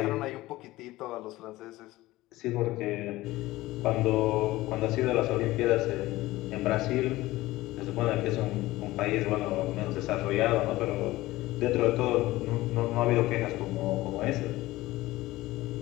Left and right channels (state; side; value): quieter; right; 18.0 dB